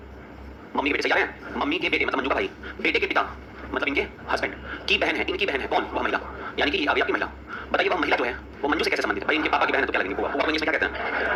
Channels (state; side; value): identical; both; correlation 1.00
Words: मम्मी के बेटे सही आ रहे हैं? मम्मी के बेटे मतलब मंजू का भाई, बेटे के पिता मतलब इनके हस्बैंड की बहन है, इनकी बहन है। कौन? वह महिला, यानी कि ये आपकी महिला। बताइए वह महिला जो है वो मंजू से कैसे संबंधित है? भाई इनके पापा की बहन है तो क्या लगेंगे? वो इंग्लिश में क्या कहते हैं?